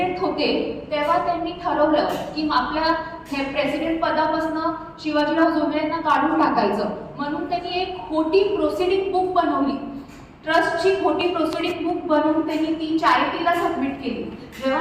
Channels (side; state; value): both; identical; correlation 1.00